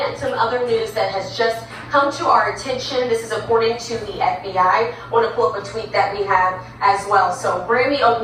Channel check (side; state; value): both; identical; correlation 1.00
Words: some other news that has just come to our attention. This is according to the FBI. I want to pull up a tweet that we have as well. So, Grammy